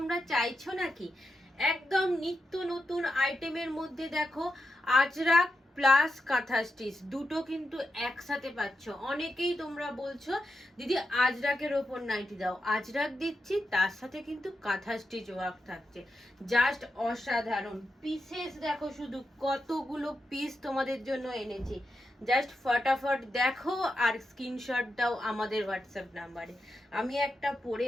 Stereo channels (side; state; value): both; normal; correlation 0.88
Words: চাইছো নাকি? একদম নিত্য নতুন আইটেমের মধ্যে দেখো আজরাক প্লাস কাঁথা স্টিচ দুটো কিন্তু একসাথে পাচ্ছ। অনেকেই তোমরা বলছো দিদি আজরাকের ওপর নাইটি দাও, আজরাক দিচ্ছি তার সাথে কিন্তু কাঁথা স্টিচ ওয়ার্ক থাকছে। জাস্ট অসাধারণ পিসেস দেখো, শুধু কতগুলো পিস তোমাদের জন্য এনেছি। জাস্ট ফটাফট দেখো আর স্ক্রিনশট দাও আমাদের হোয়াটসঅ্যাপ নাম্বারে। আমি একটা পরে